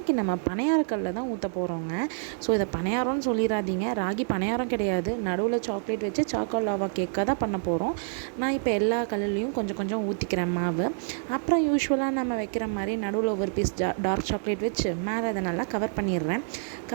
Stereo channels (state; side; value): silent; left; digital silence